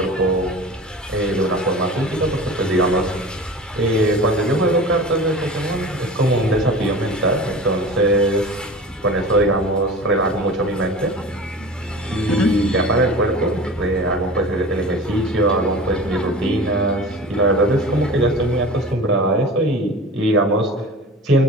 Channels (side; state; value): both; normal; correlation 0.36